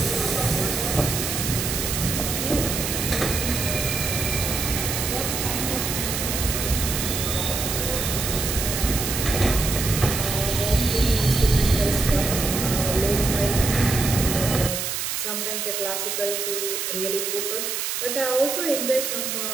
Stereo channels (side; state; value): right; noise; hiss, 2 dB below the sound